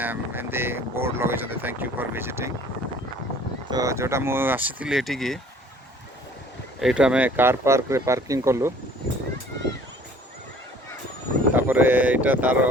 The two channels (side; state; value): both; normal; correlation 0.52